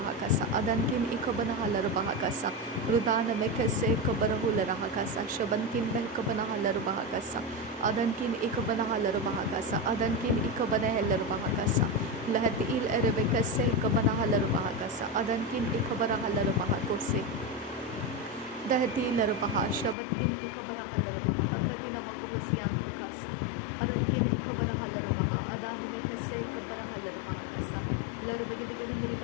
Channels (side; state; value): right; drops out; at 20.0 s